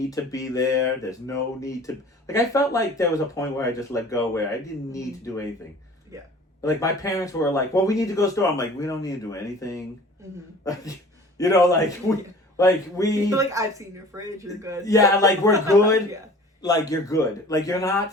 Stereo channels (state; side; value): normal; both; correlation 0.45